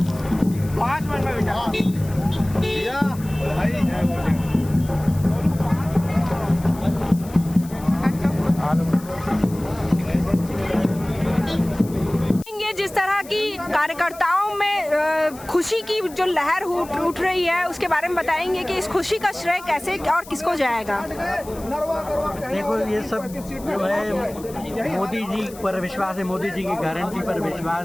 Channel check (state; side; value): noise; left; hiss, 19 dB below the sound